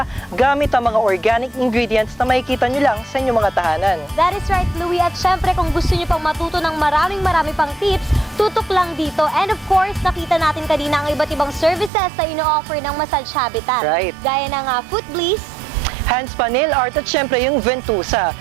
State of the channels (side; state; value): left; drops out; at 11.9 s